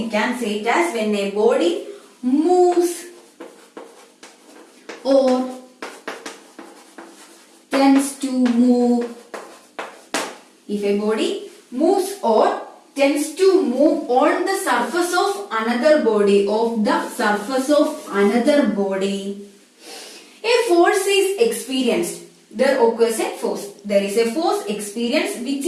can say it as when a body moves or tends to move. If a body moves or tends to move on the surface of another body, a force is experienced. There occurs a force. There is a force experienced which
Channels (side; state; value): both; identical; correlation 1.00